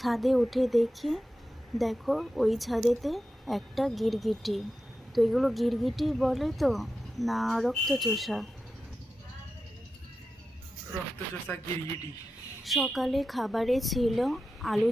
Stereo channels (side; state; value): both; normal; correlation 0.91